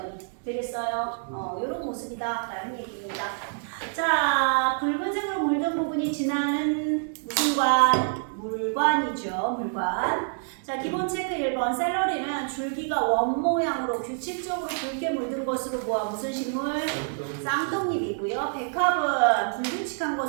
되겠어요? 이런 모습이다 라는 얘기입니다. 자, 붉은색으로 물든 부분이 지나는 무슨 관? 물관이죠. 물관. 자, 기본 체크 1번. 샐러리는 줄기가 원 모양으로 규칙적으로 붉게 물든 것으로 보아 무슨 식물? 쌍떡잎이고요. 백합은 불규칙한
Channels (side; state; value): left; silent; digital silence